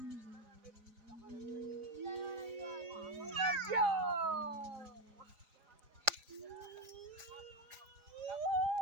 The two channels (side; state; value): left; late; 4.9 ms